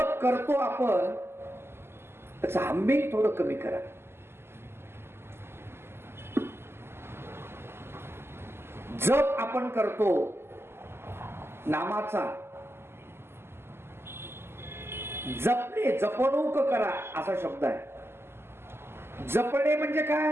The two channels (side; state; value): left; late; 0.12 ms